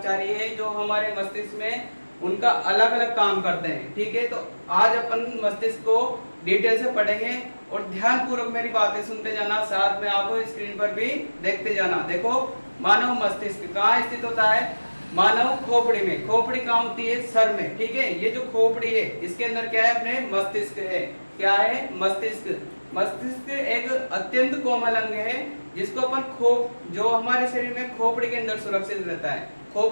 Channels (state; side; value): inverted; both; correlation -1.00